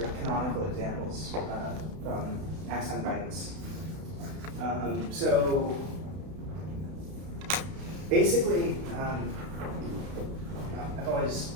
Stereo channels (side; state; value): left; late; 31 ms